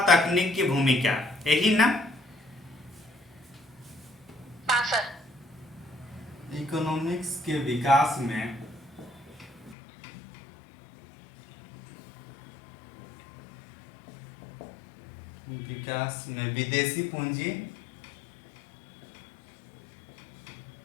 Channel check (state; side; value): drops out; right; at 9.8 s